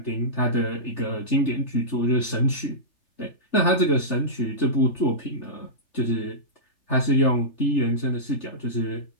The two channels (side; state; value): right; late; 3.3 ms